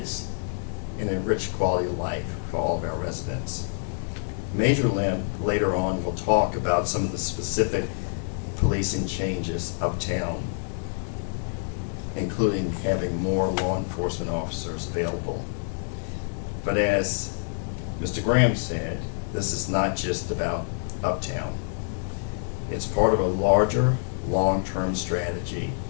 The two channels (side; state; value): right; silent; digital silence